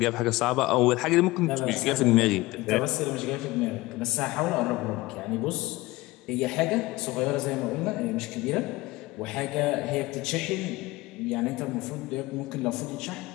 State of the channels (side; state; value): right; quieter; 20.1 dB